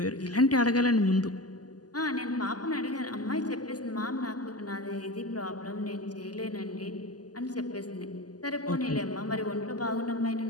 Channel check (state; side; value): late; right; 0.68 ms